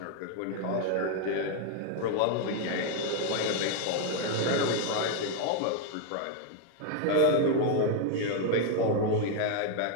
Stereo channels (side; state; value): both; different; correlation 0.00